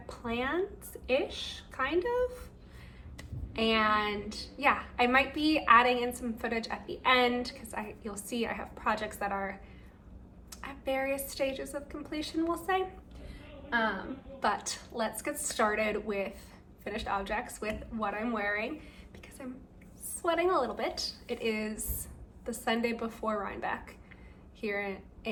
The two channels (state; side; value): identical; both; correlation 1.00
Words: plans-ish, kind of. And yeah, I might be adding in some footage at the end because you'll see I have projects that are at various stages of completion, we'll say. But let's get started with finished objects, with what I'm wearing, because I'm sweating a little bit. It is the Sunday before Rhinebeck here,